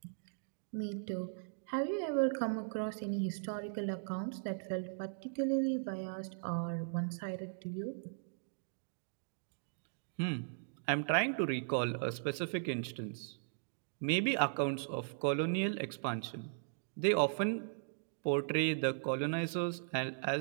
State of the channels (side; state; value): left; silent; digital silence